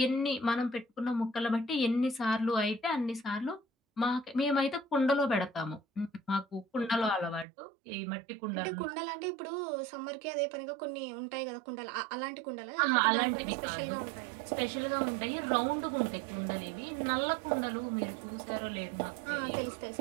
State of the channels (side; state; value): left; drops out; at 7.5 s